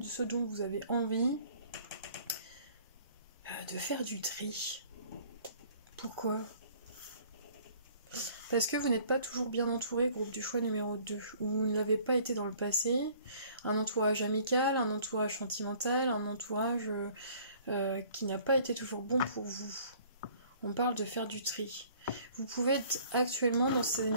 ce dont vous avez envie, de faire du tri. Pourquoi ? Parce que vous n'êtes pas toujours bien entouré, groupe du choix numéro 2, ou vous ne l'avez pas été dans le passé, un entourage amical, un entourage sentimental, un entourage qui n'a pas été toujours bon pour vous. On parle de faire du tri. Vous pouvez être actuellement dans ces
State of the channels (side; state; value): both; inverted; correlation -0.55